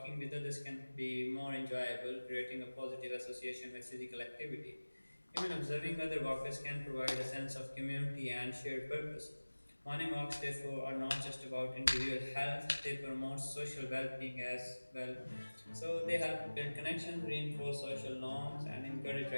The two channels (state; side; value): inverted; both; correlation -1.00